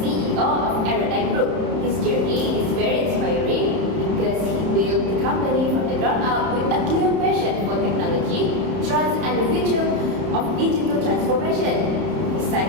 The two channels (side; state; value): left; late; 31 ms